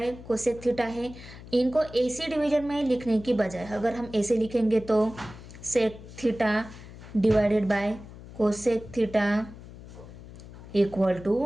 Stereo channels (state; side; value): noise; left; hum, 16 dB below the sound